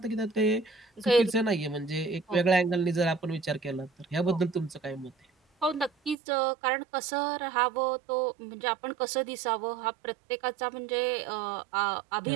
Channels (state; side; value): drops out; left; at 6.2 s